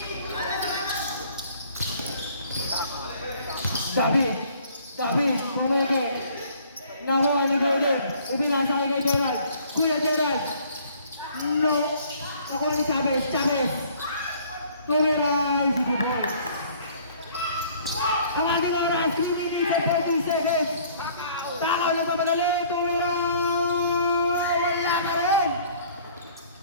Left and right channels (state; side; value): inverted; both; correlation -0.56